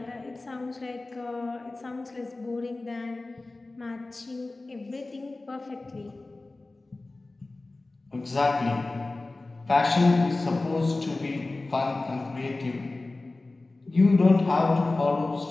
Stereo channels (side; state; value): right; quieter; 3.1 dB